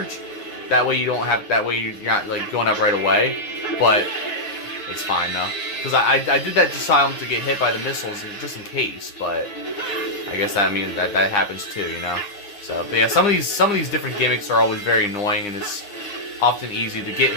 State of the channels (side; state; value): right; late; 9.8 ms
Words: That way you don't have. That way you're not like going up right away. But it's fine though, because I did that just to get hit by the missiles, just in case. But I guess that happens too, you know. So, but yeah, some of these different gimmicks are always very annoying, and it's often easy to get